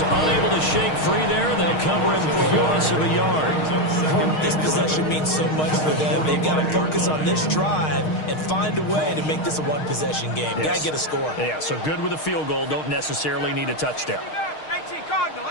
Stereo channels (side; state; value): right; late; 6.4 ms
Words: unable to shake free there. They'll cover him for a loss of a yard. This possession means so much for them. They've got to focus on this drive and find a way to make this a one-possession game. Yes. Got to get a score. Yeah, so good with a field goal. Don't necessarily need a touchdown. 18 Cardinal,